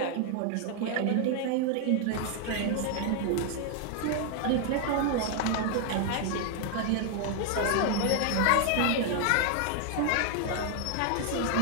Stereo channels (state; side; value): different; both; correlation 0.00